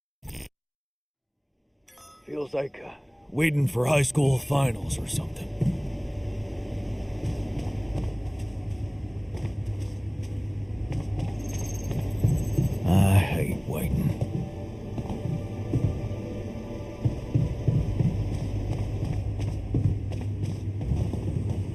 Feels like waiting for high school finals or something. I hate waiting.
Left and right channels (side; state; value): both; identical; correlation 1.00